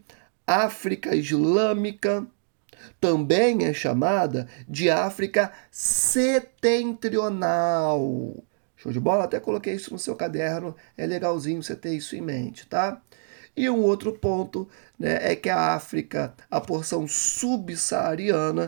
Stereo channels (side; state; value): left; silent; digital silence